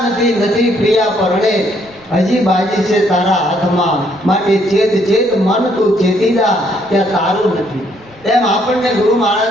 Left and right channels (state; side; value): noise; right; rumble, 29 dB below the sound